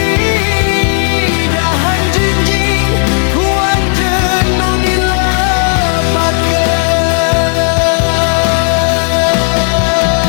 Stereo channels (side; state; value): right; silent; digital silence